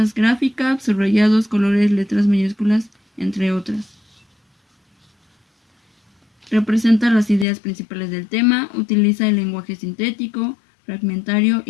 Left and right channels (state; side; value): drops out; right; at 7.5 s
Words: gráficas, subrayados, colores, letras mayúsculas, entre otras. Representa las ideas principales del tema, utiliza el lenguaje sintético, fragmentario